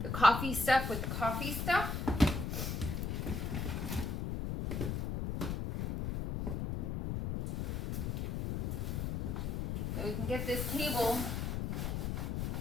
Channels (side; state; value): left; noise; rumble, 1 dB below the sound